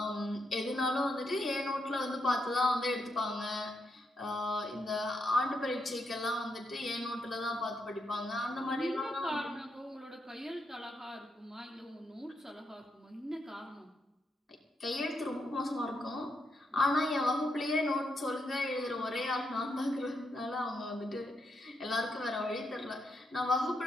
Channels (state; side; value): normal; both; correlation 0.81